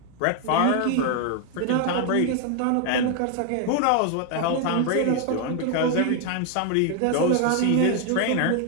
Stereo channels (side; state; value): both; different; correlation 0.01